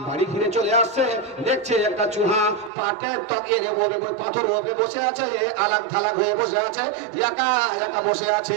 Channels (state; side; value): drops out; left; at 2.7 s